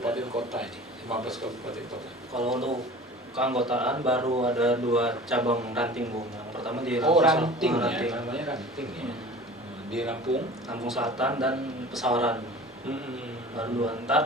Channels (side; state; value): both; normal; correlation 0.41